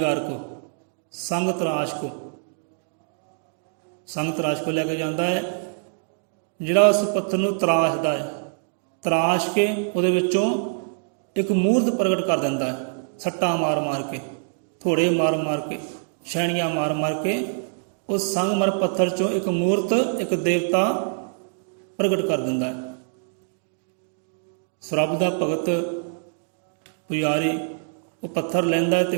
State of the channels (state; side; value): silent; left; digital silence